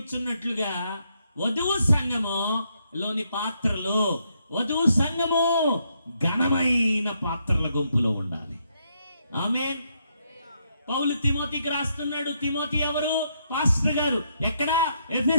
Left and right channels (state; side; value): inverted; both; correlation -0.76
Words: వధువు సంఘములోని పాత్రలు, వధువు సంఘము ఘనమైన పాత్రల గుంపులో ఉండాలి. ఆమేన్. పౌలు తిమోతికి రాస్తున్నాడు. తిమోతి ఎవరు? పాస్టర్ గారు. ఎక్కడ?